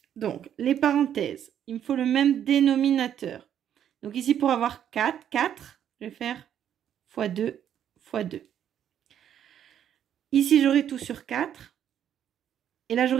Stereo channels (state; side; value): quieter; left; 9.7 dB